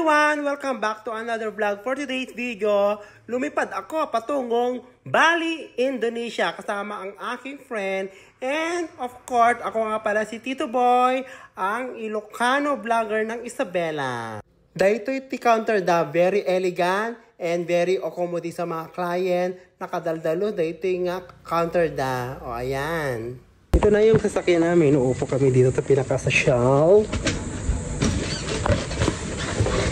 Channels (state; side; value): identical; both; correlation 1.00